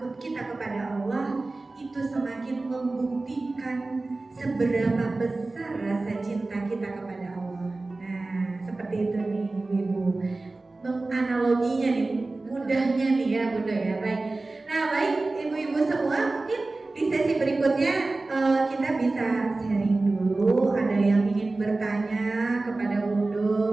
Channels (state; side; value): quieter; left; 3.2 dB